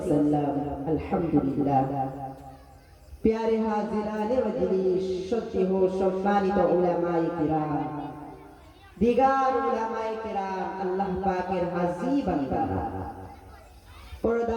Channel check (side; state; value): both; identical; correlation 1.00